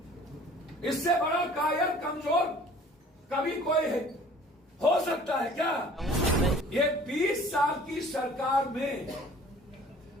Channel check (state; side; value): normal; both; correlation 0.50